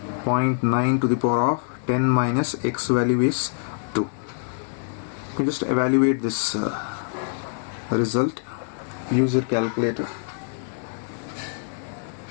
0.9 to the power of 10 minus x value is 2. You can just evaluate this result. Use your calculator.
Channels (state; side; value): silent; right; digital silence